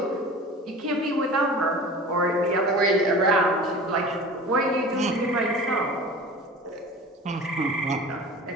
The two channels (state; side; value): normal; both; correlation 0.38